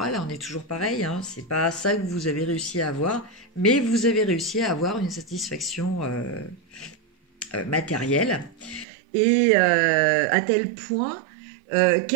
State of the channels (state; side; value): drops out; left; at 8.8 s